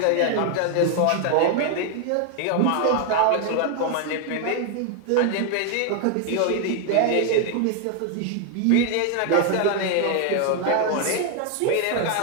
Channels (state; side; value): different; both; correlation 0.00